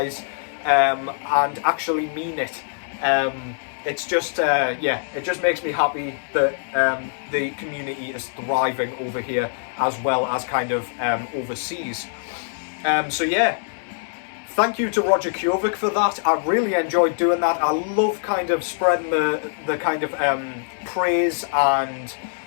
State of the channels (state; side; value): silent; right; 63 dB below the other